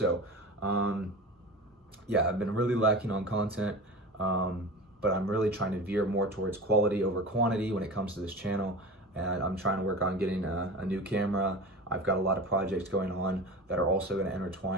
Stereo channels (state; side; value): normal; both; correlation 0.32